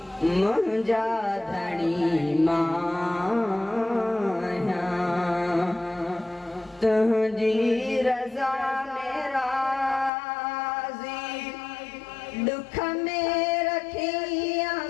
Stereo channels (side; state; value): right; drops out; at 10.1 s